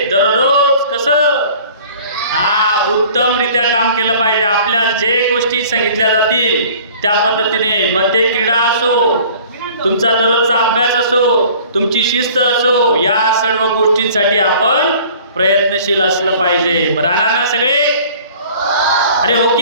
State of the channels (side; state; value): both; inverted; correlation -0.49